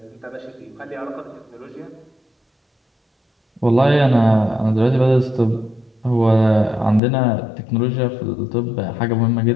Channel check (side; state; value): right; drops out; at 7.0 s